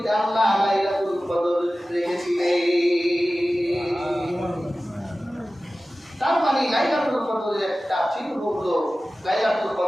আল্লাহ লাইলাতুল কদর রেখেছিলেন। তার মানে লাইলাতুল কদরের একটা চিহ্ন হলো লাইলাতুল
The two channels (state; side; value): normal; both; correlation 0.96